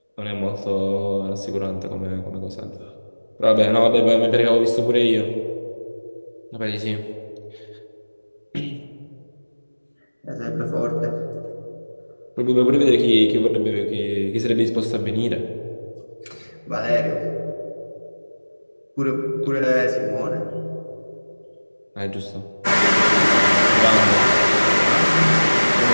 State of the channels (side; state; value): both; inverted; correlation -1.00